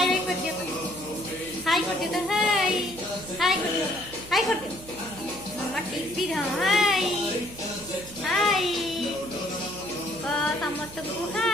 बाय कर दियो, हाय कर दियो, हाय हाय कर दियो, हाय कर दियो मामा। टीवी रो हाय हाय समस्त को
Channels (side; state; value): right; noise; hum, 18 dB below the sound